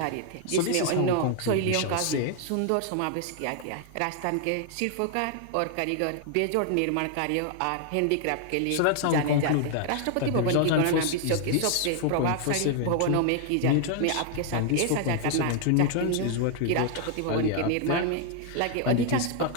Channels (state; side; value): different; both; correlation 0.00